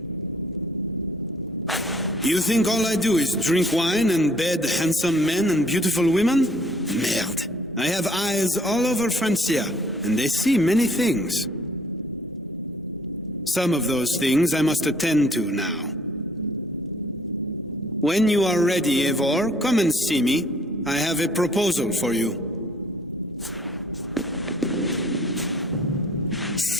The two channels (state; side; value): normal; both; correlation 0.60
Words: You think all I do is drink wine and bed handsome men and beautiful women? Merde. I have eyes all over Francia, and they see many things. Some of those things I must attend to now. When you are ready, Eivor, come and see me. I have a proposal for you.